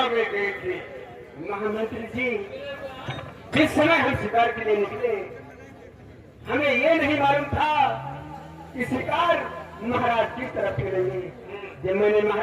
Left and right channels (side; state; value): both; identical; correlation 1.00